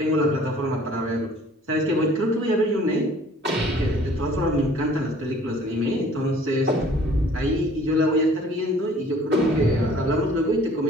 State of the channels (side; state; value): both; normal; correlation 0.53